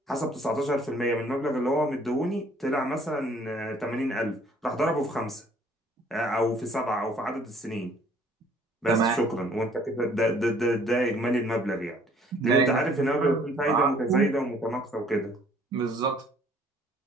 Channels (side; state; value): both; normal; correlation 0.58